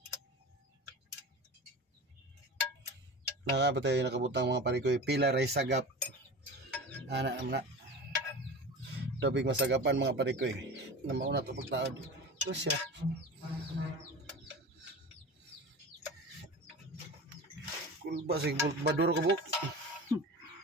Nakabatay nakabutang mga parikoy pila ray sagap. Ana naman na. Dobig masagapan mga parikoy. Na mauna to pagtaod. Ito siya. Kulba sig baduro ko buk.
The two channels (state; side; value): normal; both; correlation 0.32